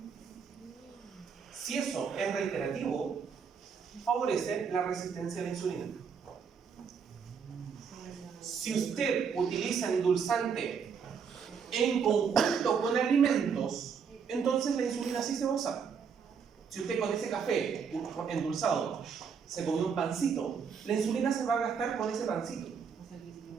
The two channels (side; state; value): left; quieter; 6.4 dB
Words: Si eso es reiterativo, favorece la resistencia a la insulina. Si usted utiliza endulzante en conjunto con alimentos, entonces la insulina sí se va a usar. Si usted con ese café endulzado se come un pancito, la insulina se va a gastar con ese pancito.